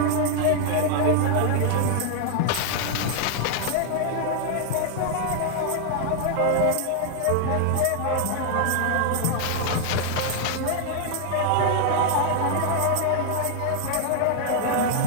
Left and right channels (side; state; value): both; different; correlation 0.00